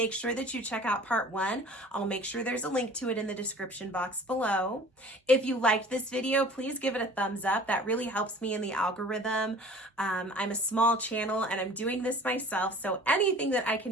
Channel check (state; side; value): normal; both; correlation 0.46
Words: sure that you check out part 1. I'll make sure there's a link to it in the description box below. If you liked this video, please give it a thumbs up. That really helps me in the algorithm. I'm a small channel and I'm doing this myself, so anything that I